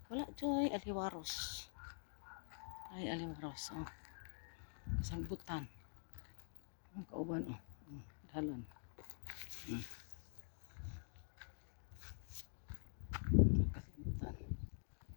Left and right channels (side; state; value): right; silent; digital silence